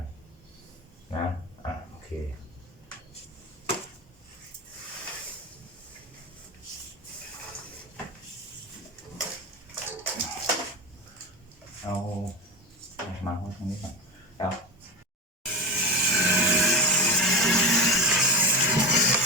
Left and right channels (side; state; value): both; normal; correlation 0.22